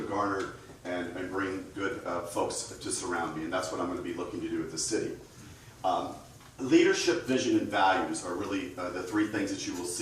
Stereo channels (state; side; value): identical; both; correlation 1.00